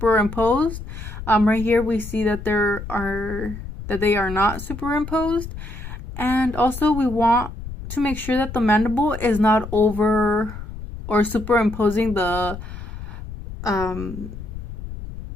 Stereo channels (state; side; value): noise; left; rumble, 10 dB below the sound